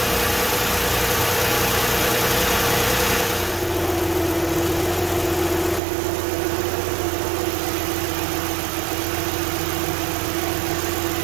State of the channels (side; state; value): left; drops out; at 5.8 s